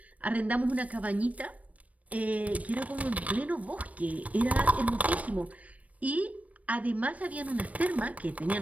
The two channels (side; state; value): left; late; 0.068 ms